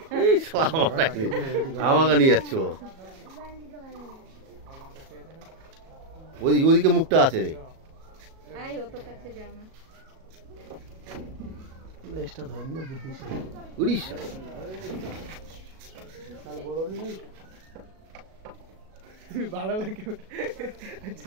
এই শালা আমাকে নিয়ে যাচ্ছ ওদিকে মুখটা আছে রে লেজটা ধরে নিলে বুদ্ধি উড়িষ্যা ভালো করে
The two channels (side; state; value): left; late; 37 ms